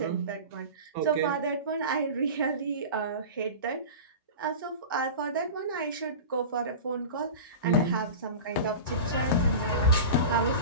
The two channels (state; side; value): inverted; both; correlation -0.31